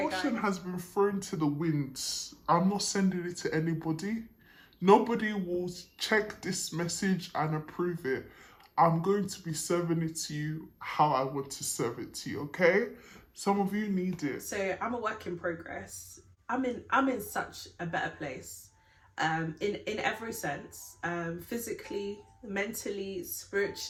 Caution guys? has been thrown to the winds. I'm not sending it to anybody. Nobody will check this message and approve it. I'm going to be serving it to you how I want to serve it to you, okay? Some of you need it. So I'm a work in progress. I'm in such a better place, in every sense, physically, mentally,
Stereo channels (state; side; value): identical; both; correlation 1.00